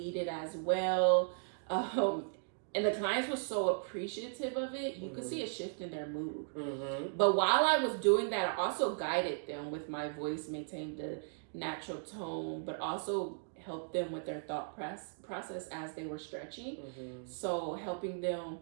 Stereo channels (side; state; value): left; silent; digital silence